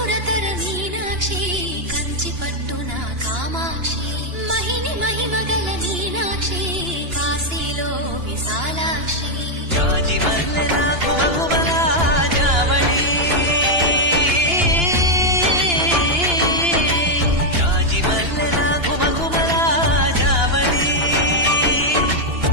మీనాక్షి కంచి పట్టున కామాక్షి మహిని మహిమగల మీనాక్షి కాశీలో విశాలాక్షి జాజి మల్లెల ఘుమఘుమల జావళి జాజి మల్లెల ఘుమఘుమల జావళి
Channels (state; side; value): late; left; 2.9 ms